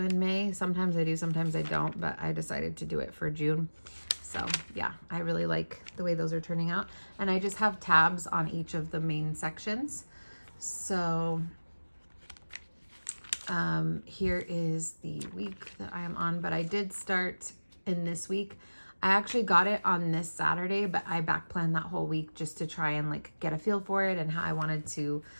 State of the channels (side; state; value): both; inverted; correlation -1.00